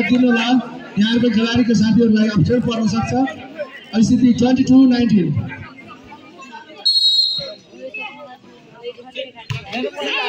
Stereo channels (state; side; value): identical; both; correlation 1.00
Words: होला, यहाँको खेलाडीको साथीहरूलाई अप्ठ्यारो पर्न सक्छ। स्थिति 22-19।